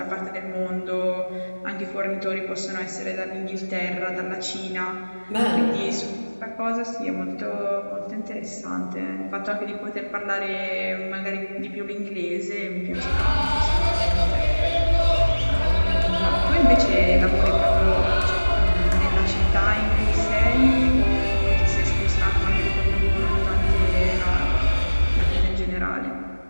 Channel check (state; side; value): inverted; both; correlation -1.00